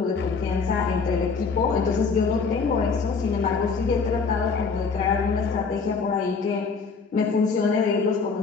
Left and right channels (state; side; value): quieter; right; 5.0 dB